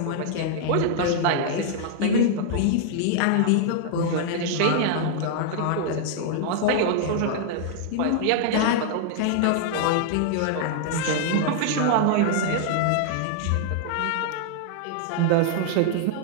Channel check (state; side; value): different; both; correlation -0.01